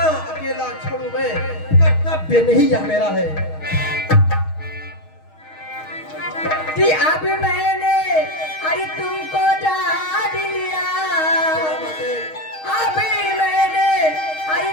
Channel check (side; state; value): right; late; 6.4 ms